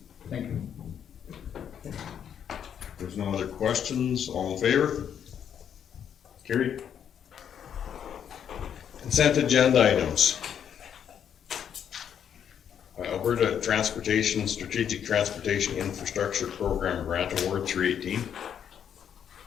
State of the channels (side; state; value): right; quieter; 8.6 dB